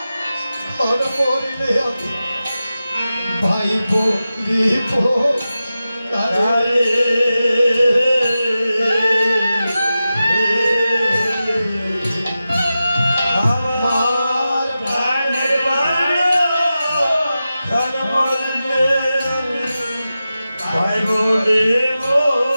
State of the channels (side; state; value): both; inverted; correlation -0.93